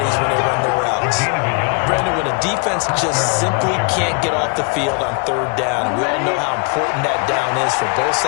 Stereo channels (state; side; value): quieter; right; 33.5 dB